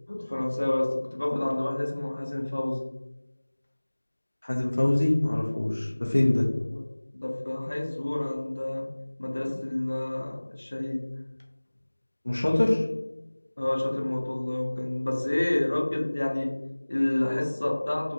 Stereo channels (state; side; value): inverted; both; correlation -1.00